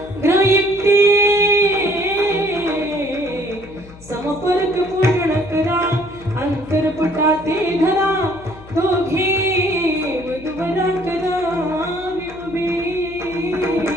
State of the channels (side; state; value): left; noise; hum, 20 dB below the sound